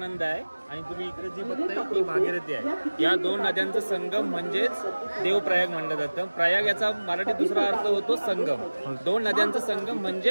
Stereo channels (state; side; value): inverted; both; correlation -1.00